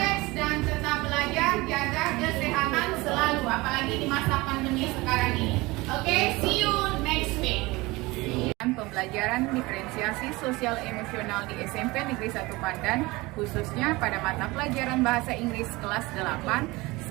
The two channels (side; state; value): left; quieter; 22.1 dB